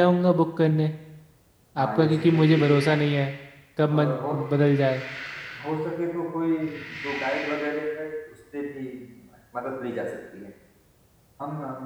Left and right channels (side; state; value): both; identical; correlation 1.00